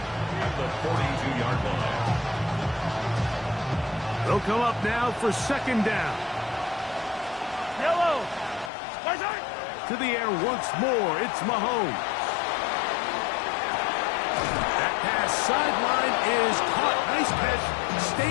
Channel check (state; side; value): drops out; right; at 8.7 s